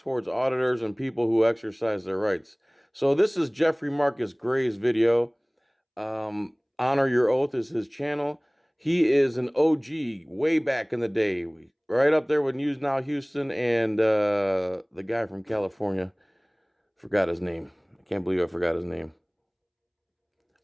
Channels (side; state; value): both; identical; correlation 1.00